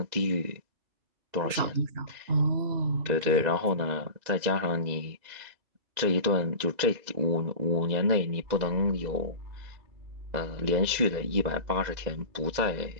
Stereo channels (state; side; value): late; left; 2.0 ms